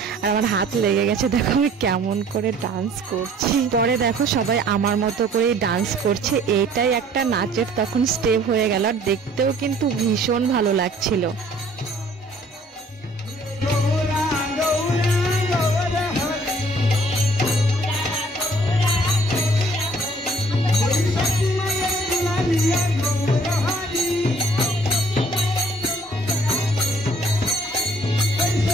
আর আমার হাত লেগে গেছে, দেখো আমি কেমন করে ডান্স করছি। পরে দেখো সবাই আমার মতো করেই ডান্স করছে। এইটাই একটা নাচের তখন স্টেপ হয়ে গেল, আর দেখতেও কিন্তু ভীষণ ভালো লাগছিল।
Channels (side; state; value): both; normal; correlation 0.56